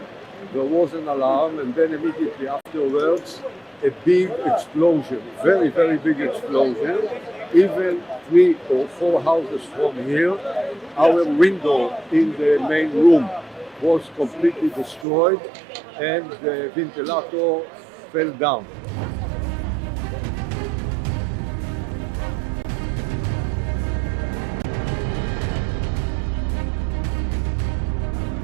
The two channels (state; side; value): drops out; left; at 15.1 s